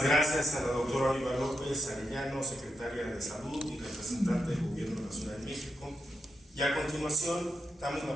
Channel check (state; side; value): normal; both; correlation 0.85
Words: gracias a la doctora Oliva López Arellano, secretaria de Salud y representante del Gobierno de la Ciudad de México. Y a continuación damos